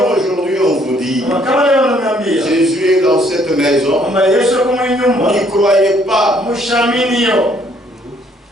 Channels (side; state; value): both; normal; correlation 0.65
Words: aujourd'hui on vous dit, Jésus est dans cette maison, n'y croyez pas.